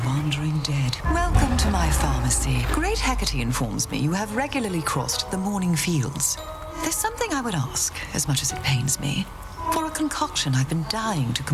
wandering dead. Welcome to my pharmacy. Great Hecate informs me you have regularly crossed the morning fields. There's something I would ask, as much as it pains me, for a concoction I've been dying to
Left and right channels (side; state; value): both; identical; correlation 1.00